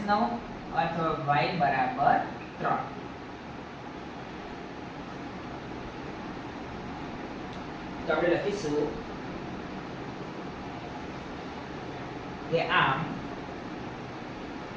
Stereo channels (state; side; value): identical; both; correlation 1.00